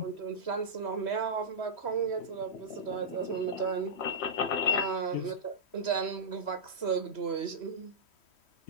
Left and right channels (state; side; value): late; right; 3.1 ms